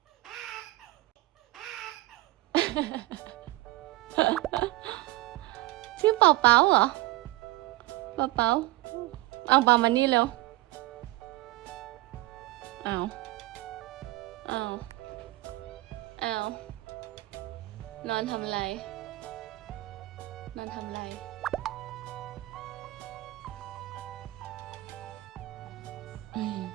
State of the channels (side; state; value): left; quieter; 19.6 dB